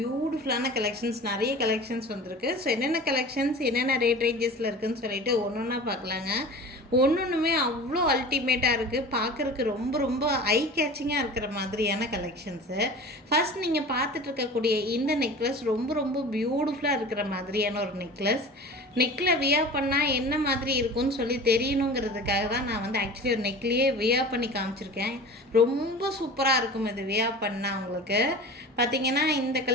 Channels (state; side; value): normal; both; correlation 0.38